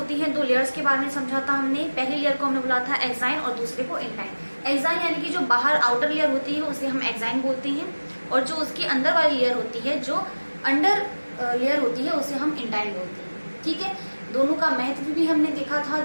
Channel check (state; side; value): inverted; both; correlation -1.00